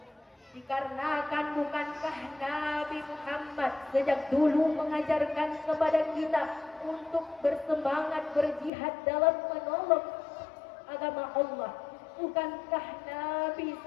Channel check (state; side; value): drops out; right; at 8.7 s